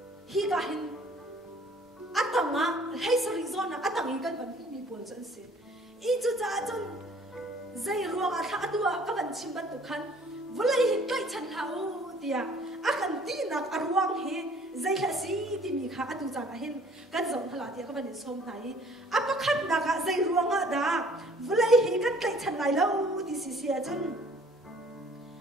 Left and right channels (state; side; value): normal; both; correlation 0.55